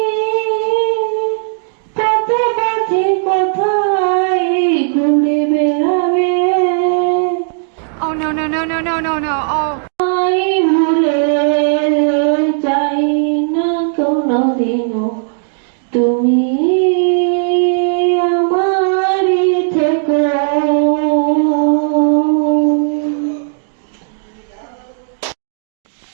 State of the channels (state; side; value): silent; left; digital silence